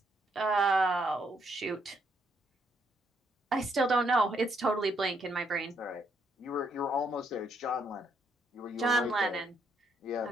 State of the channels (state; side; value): normal; both; correlation 0.73